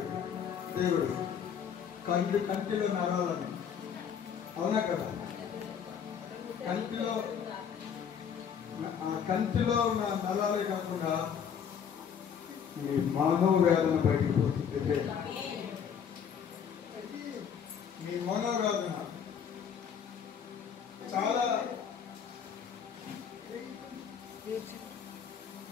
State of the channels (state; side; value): quieter; right; 7.6 dB